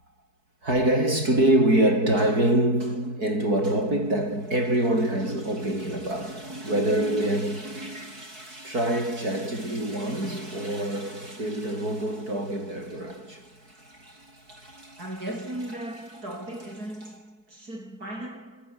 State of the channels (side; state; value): left; late; 4.6 ms